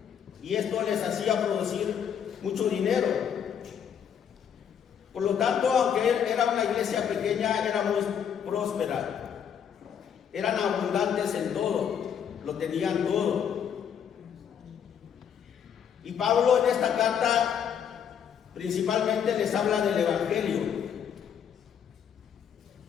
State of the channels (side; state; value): right; quieter; 8.2 dB